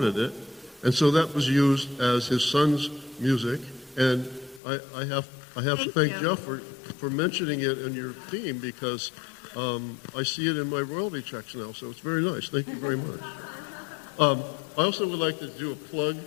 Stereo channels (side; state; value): right; drops out; at 4.6 s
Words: it. And so that was used as his son's music. And I have to thank Jeff for mentioning it in your theme, because I see it in my royalty checks now. So it's very nice. Thank you very much. I also would like to do a plug.